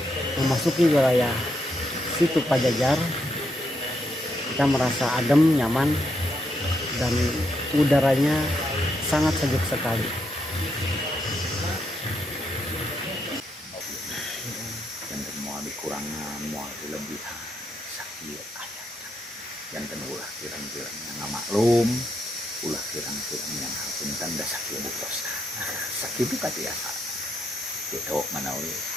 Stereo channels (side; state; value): both; normal; correlation 0.79